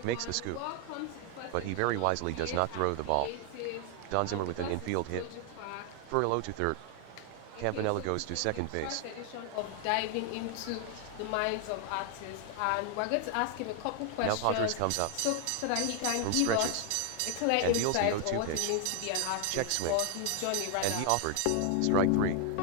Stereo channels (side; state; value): both; different; correlation 0.00